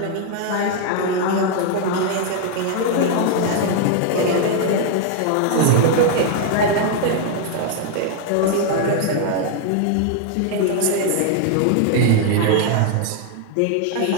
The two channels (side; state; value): both; different; correlation 0.00